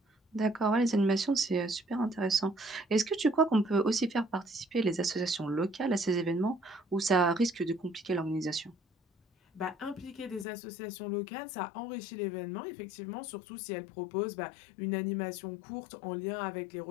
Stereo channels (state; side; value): drops out; right; at 10.5 s